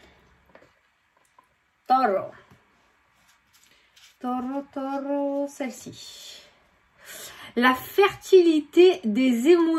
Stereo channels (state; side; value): identical; both; correlation 1.00